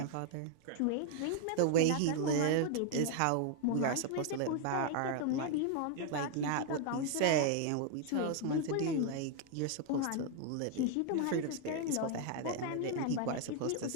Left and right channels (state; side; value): different; both; correlation 0.00